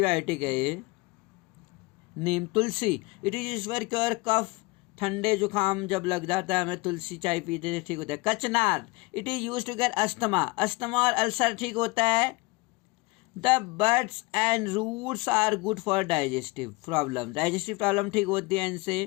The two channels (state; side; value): quieter; right; 24.2 dB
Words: है ये neem. Tulsi, it is use for cure cough, ठंडे जुकाम जब लग जाता है हमें तुलसी चाय पीते थे ठीक होता है। Kachnar, it is use to care asthma, asthma और अल्सर ठीक होता है। The buds and roots are good for digestive problem, digestive problem ठीक होती है